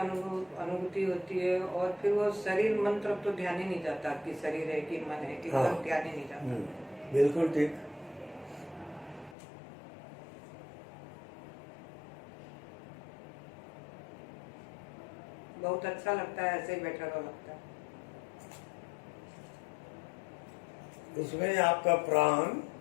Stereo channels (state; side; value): drops out; right; at 9.3 s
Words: होती है। और फिर वो शरीर मन तरफ तो ध्यान ही नहीं जाता कि शरीर है कि मन है, कि हाँ। एकदम ध्यान ही नहीं जाता। बिल्कुल ठीक। बहुत अच्छा लगता है, ऐसे ही बैठा हुआ लगता है। उसमें आपका प्राण